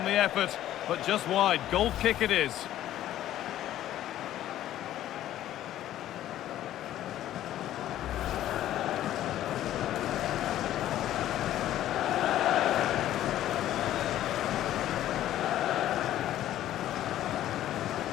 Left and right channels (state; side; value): quieter; right; 12.8 dB